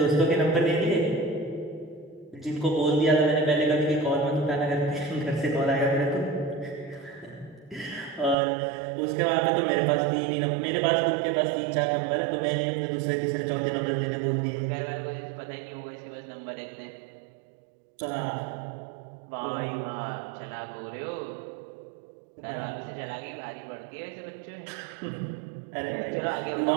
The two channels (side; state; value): left; drops out; at 8.3 s